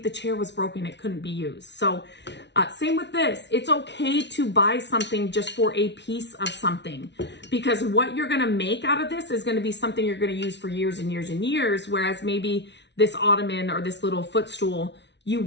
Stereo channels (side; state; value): right; late; 0.51 ms